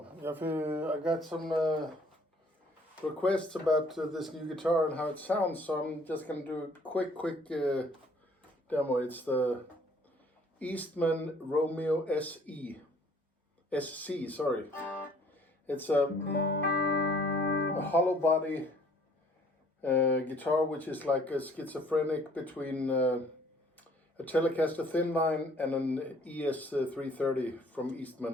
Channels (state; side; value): normal; both; correlation 0.58